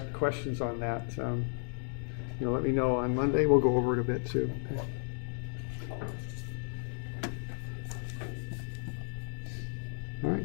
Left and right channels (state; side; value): silent; right; digital silence